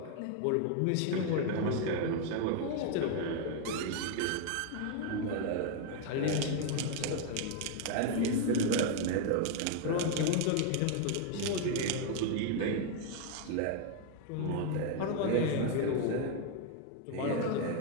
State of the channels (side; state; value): both; different; correlation 0.01